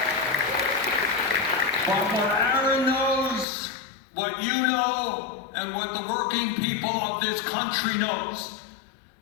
But what Aaron knows, what you know, and what the working people of this country knows,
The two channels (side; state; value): right; drops out; at 3.5 s